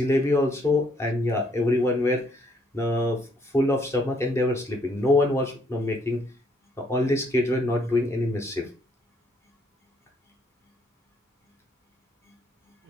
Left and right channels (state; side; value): normal; both; correlation 0.68